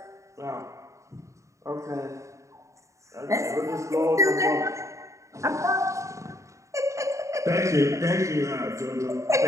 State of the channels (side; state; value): left; late; 0.15 ms